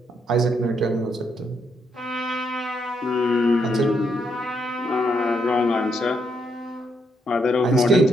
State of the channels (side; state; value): both; normal; correlation 0.76